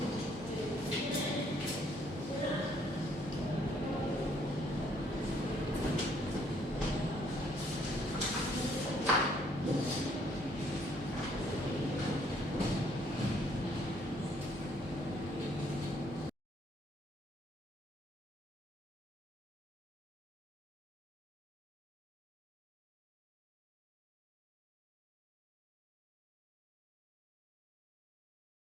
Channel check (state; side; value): normal; both; correlation 0.66